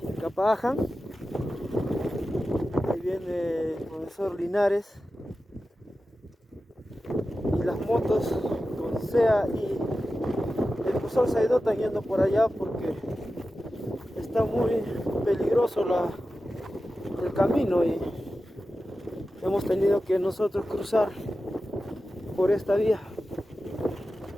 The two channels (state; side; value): normal; both; correlation 0.93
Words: Capaaján. Ahí viene el profesor Linares y las motos con SEA y el profesor Saido están yendo por allá porque está muy peligroso el camino y hemos tenido que nosotros cruzar por esta vía.